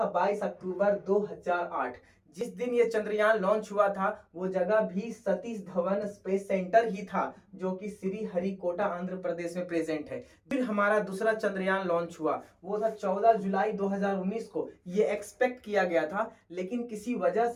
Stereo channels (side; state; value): both; identical; correlation 1.00